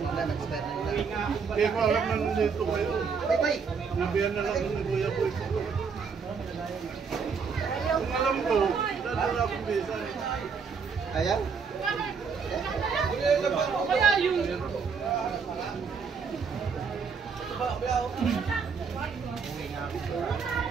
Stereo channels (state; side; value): quieter; left; 5.7 dB